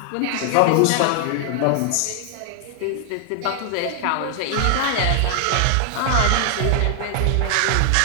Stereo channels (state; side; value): different; both; correlation 0.00